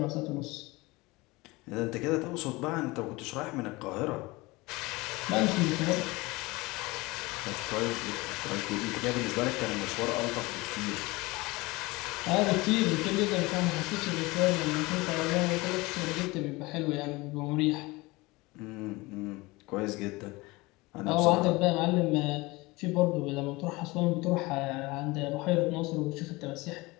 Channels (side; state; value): right; quieter; 22.6 dB